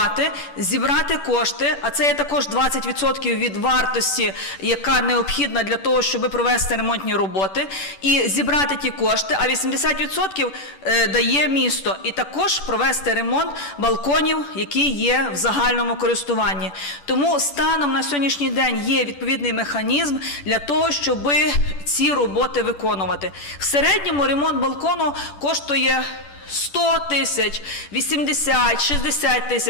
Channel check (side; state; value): right; late; 10 ms